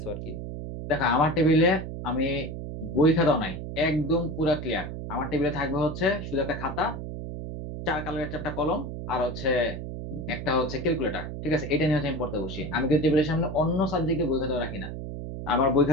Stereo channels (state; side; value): noise; right; hum, 7 dB below the sound